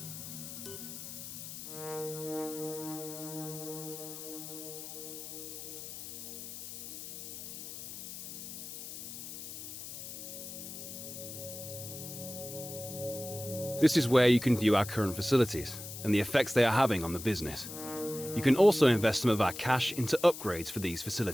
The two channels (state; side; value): noise; left; hiss, 10 dB below the sound